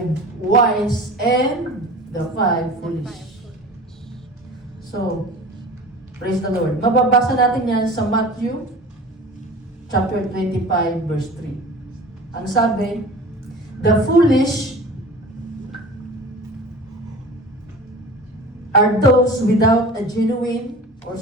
wise and the 5 foolish. So, praise the Lord. Mababasa natin yan sa Matthew chapter 25 verse 3. Ang sabi, the foolish are those without a genuine or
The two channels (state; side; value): normal; both; correlation 0.38